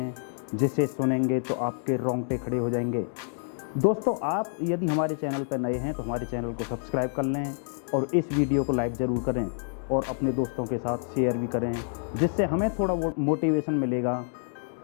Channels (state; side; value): silent; right; digital silence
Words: जिसे सुनेंगे तो आपके रोंगटे खड़े हो जाएंगे। दोस्तों, आप यदि हमारे चैनल पर नए हैं तो हमारे चैनल को सब्सक्राइब कर लें और इस वीडियो को लाइक ज़रूर करें और अपने दोस्तों के साथ शेयर भी करें, जिससे हमें थोड़ा मोटिवेशन मिलेगा